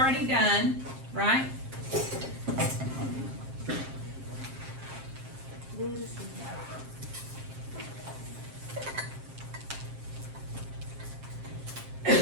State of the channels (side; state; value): left; late; 7.5 ms